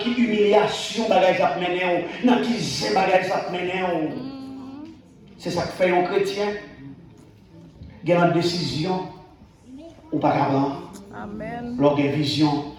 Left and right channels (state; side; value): identical; both; correlation 1.00